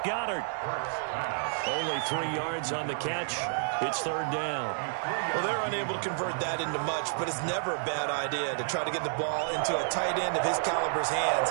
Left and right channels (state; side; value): silent; left; digital silence